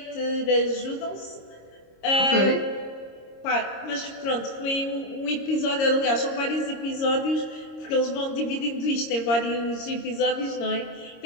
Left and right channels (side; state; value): right; late; 26 ms